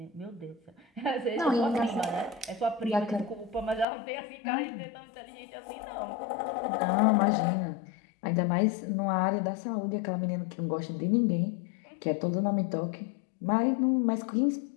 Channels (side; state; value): right; drops out; at 3.9 s